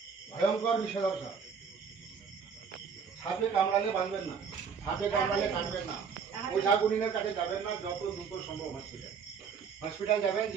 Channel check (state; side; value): quieter; left; 6.3 dB